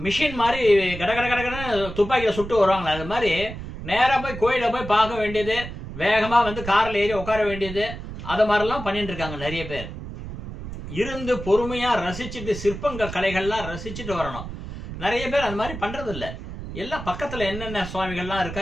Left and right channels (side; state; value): right; noise; rumble, 10 dB below the sound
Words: மிஷின் மாதிரி கடகடன்னு துப்பாக்கியில சுட்டு வருவாங்களா, அது மாதிரி நேரா போய் கோயில போய் பார்க்க வேண்டியது, வேகமா கார்ல ஏறி உட்கார வேண்டியது, அது மாதிரிலாம் பண்ணிட்டு இருக்காங்க நிறைய பேர். இருந்து பொறுமையா ரசிச்சுட்டு சிற்பங்கள் கலைகள்லாம் ரசிச்சுட்டு வரணும். நிறைய பேர் அந்த மாதிரி பண்றது இல்லை. எல்லாம் பக்கத்துல என்னென்ன சுவாமிகள்லாம் இருக்கா,